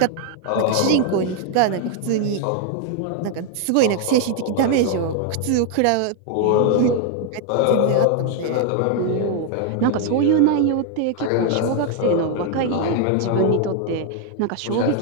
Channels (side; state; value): both; different; correlation 0.00